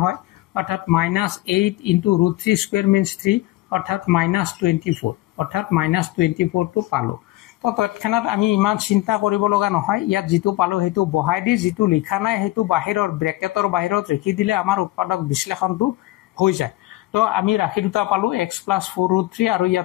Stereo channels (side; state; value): right; quieter; 17.8 dB